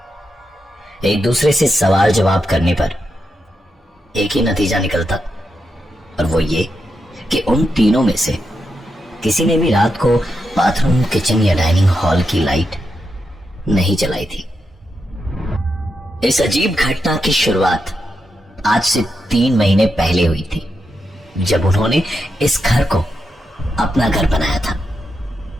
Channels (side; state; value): both; normal; correlation 0.86